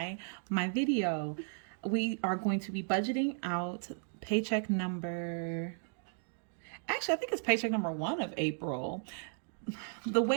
my video. We are going to be budgeting out paycheck number, actually, I think it's paycheck number 1 of April. The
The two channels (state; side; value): silent; left; 54 dB below the other